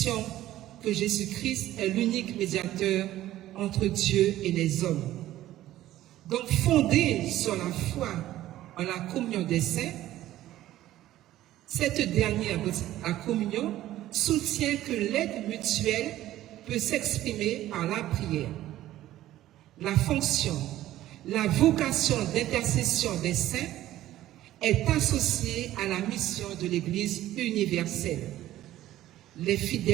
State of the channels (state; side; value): quieter; left; 14.2 dB